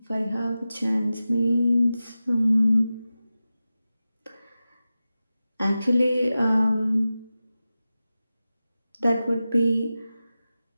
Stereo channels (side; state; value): both; inverted; correlation -0.94